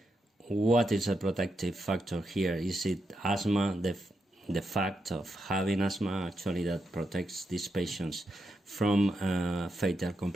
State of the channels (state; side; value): normal; both; correlation 0.84